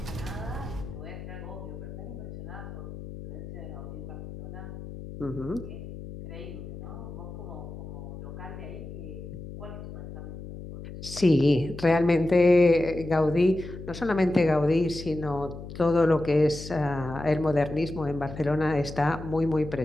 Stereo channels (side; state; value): left; noise; hum, 11 dB below the sound